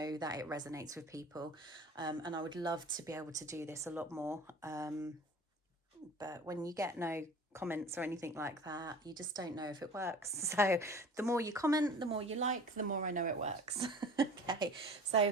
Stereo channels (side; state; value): both; normal; correlation 0.42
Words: that it resonates with people, and I would love to be able to do this a lot more. But when you get no comments or anything like that, you just don't know if it works. So the more you comment, the more you like, the more I know it works. Okay,